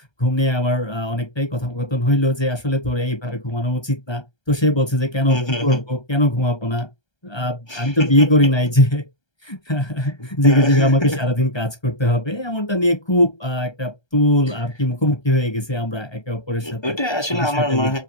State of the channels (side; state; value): right; late; 1.3 ms